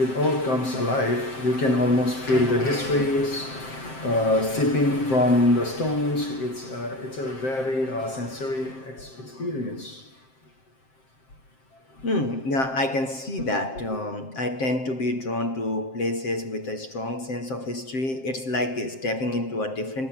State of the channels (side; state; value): right; late; 7.6 ms